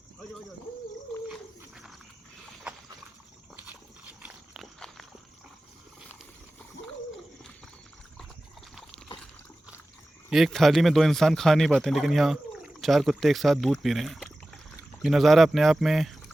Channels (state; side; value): normal; both; correlation 0.96